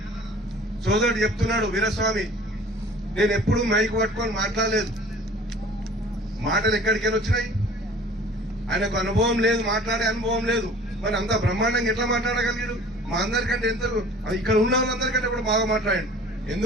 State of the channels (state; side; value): normal; both; correlation 0.47